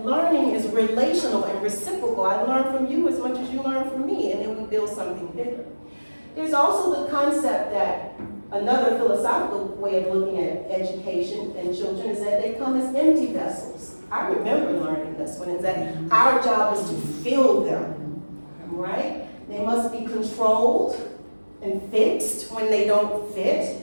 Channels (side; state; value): both; inverted; correlation -1.00